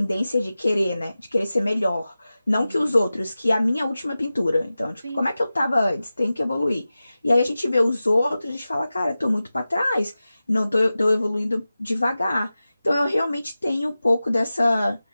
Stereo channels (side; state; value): both; inverted; correlation -0.95